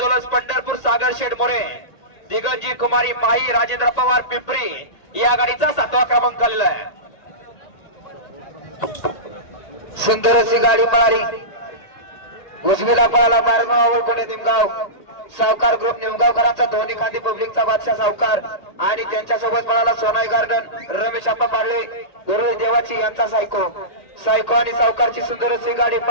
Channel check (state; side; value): late; right; 1.8 ms